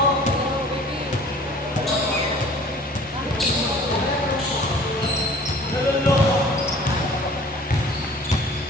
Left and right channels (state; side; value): normal; both; correlation 0.49